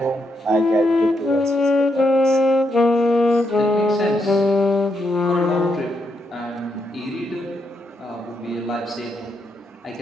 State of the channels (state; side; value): normal; both; correlation 0.80